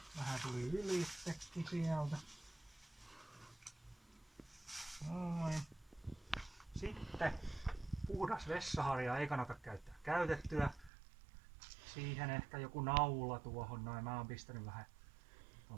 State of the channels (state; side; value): drops out; left; at 10.9 s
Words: vähän tuli ylitsekin sieltä. Noin. Sitten puhdas vessaharja ei kannata käyttää käytettyä. Siihen ehkä joku naula tuohon noin. Mä oon pistänyt vähän